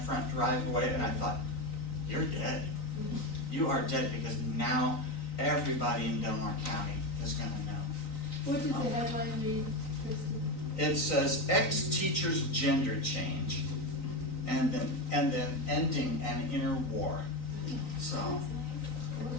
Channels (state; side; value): late; right; 3.9 ms